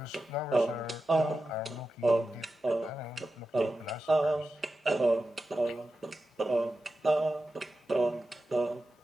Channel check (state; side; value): normal; both; correlation 0.91